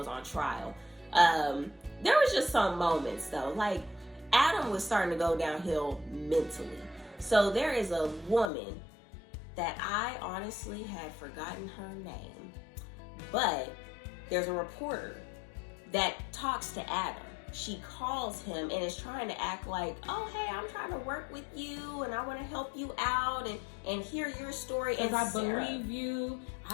on trial. There was just some moments though, like Adam was starting to go downhill mentally. So there is a woman that I honestly had forgotten her name, but there's a reporter that talks to Adam. She calls him and is trying to act like, oh, hey, I'm trying to work with you and I want to help you out and hear your story. And I believe you.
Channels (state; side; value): drops out; right; at 8.5 s